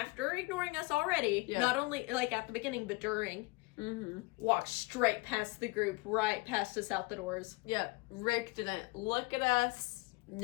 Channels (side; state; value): right; quieter; 24.6 dB